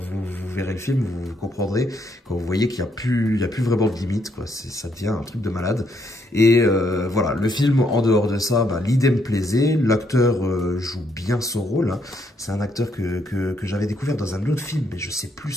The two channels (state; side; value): normal; both; correlation 0.73